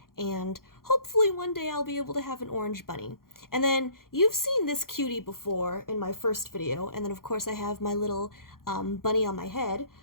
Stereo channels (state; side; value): late; right; 0.92 ms